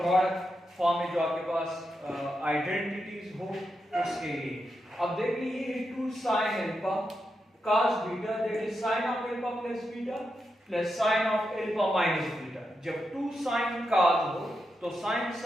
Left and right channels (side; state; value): both; normal; correlation 0.86